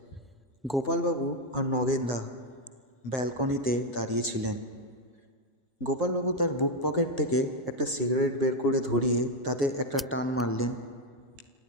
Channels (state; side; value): normal; both; correlation 0.05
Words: গোপালবাবু আর নগেনদা ব্যালকনিতে দাঁড়িয়েছিলেন। গোপালবাবু তার বুক পকেট থেকে একটা সিগারেট বের করে ধরিয়ে তাতে একটা টান মারলেন